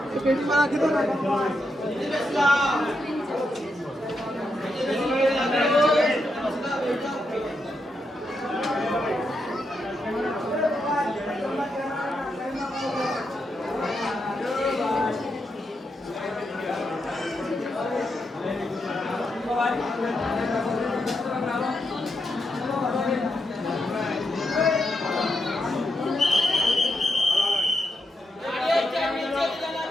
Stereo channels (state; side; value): normal; both; correlation 0.83